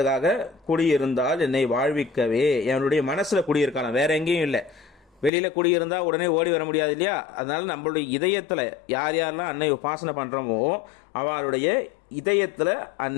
குடியிருந்தால் என்னை வாழ்விக்கவே. என்னுடைய மனசுல குடியிருக்கலாம், வேற எங்கேயும் இல்லை. வெளியில குடியிருந்தா உடனே ஓடி வர முடியாது இல்லையா. அதனால நம்மளுடைய இதயத்துல யார் யாரெல்லாம் அன்னை உபாசனை பண்றோமோ அவளுடைய இதயத்துல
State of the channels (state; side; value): drops out; right; at 5.3 s